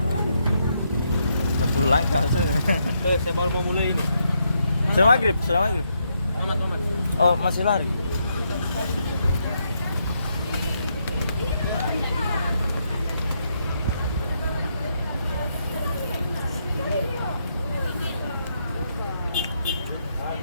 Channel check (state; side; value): inverted; both; correlation -0.78